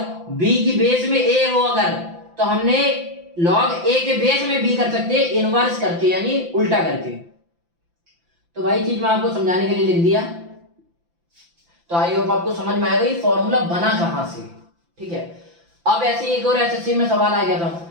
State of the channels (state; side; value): late; left; 5.9 ms